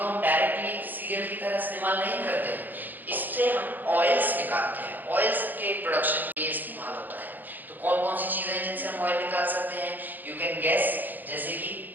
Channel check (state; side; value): late; left; 0.087 ms